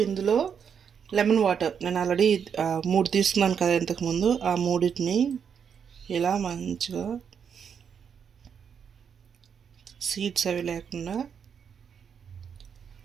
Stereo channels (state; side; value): quieter; left; 7.3 dB